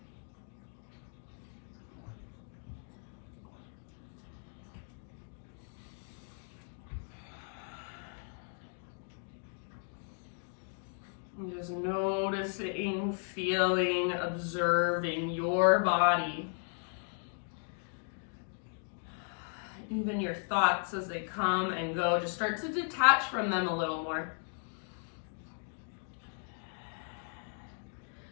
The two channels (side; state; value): right; silent; 54 dB below the other